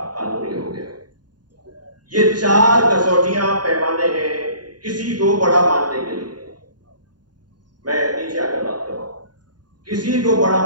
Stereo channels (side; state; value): left; late; 0.70 ms